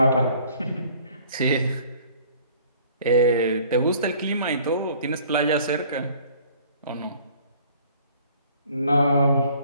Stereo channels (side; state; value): both; inverted; correlation -0.54